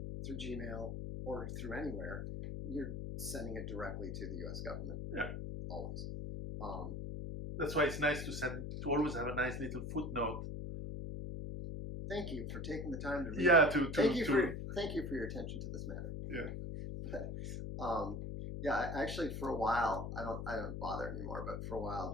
through Gmail or through anywhere, you're sending it directly to the U.S. government. Yeah. Always. That's why it's nice to always have a nice little footnote. Thank you for taking the time to read. Yeah, thank you for your attention to this matter. Yeah. But yeah, actually, for a while, I don't bother anymore. But for a while,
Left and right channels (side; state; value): left; noise; hum, 5 dB below the sound